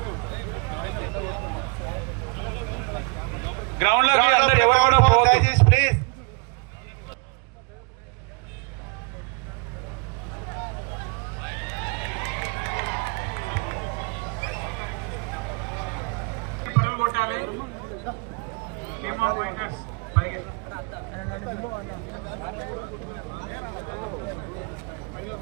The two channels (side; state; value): left; quieter; 32.4 dB